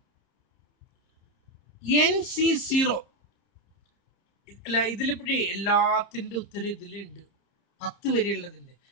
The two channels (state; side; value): late; right; 30 ms